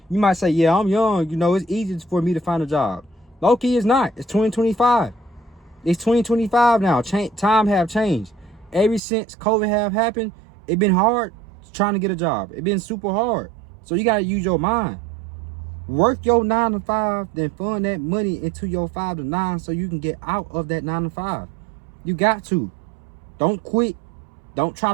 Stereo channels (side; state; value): left; drops out; at 9.0 s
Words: You might say, yeah, I'm young. You know, it's easy for me to find a job. Low-key, it's not. It's 2025. It's 2025 now. Time have changed. Ever since COVID have happened, it been hard trying to get a job. It been super hard. So you got to use your mind. Work your 9 to 5, then fund that money into your 5 to 9 so you can get out of that 9 to 5. You got to. Don't quit. Don't try